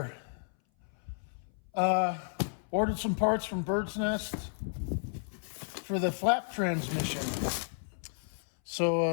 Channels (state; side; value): silent; right; 56 dB below the other